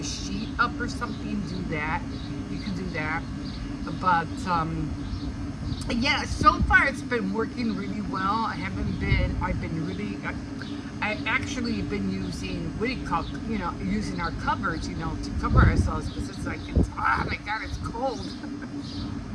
sheet up or something, do that. You can do that. But yeah, so far it's been working really well. I actually been using, using our covers, to cover ourselves, because it's like, oh my God, it's cold.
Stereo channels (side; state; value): both; identical; correlation 1.00